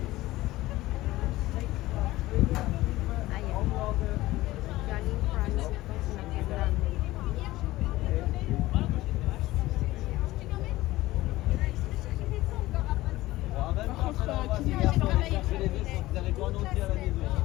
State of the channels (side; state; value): right; quieter; 17.6 dB